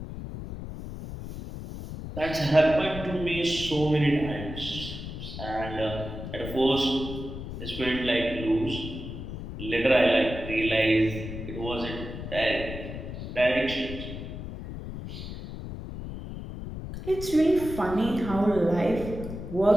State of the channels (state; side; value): noise; left; rumble, 9 dB below the sound